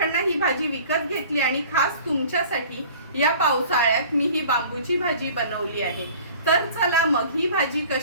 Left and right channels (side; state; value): both; inverted; correlation -0.46